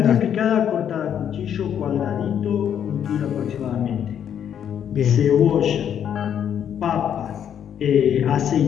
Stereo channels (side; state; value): right; quieter; 9.1 dB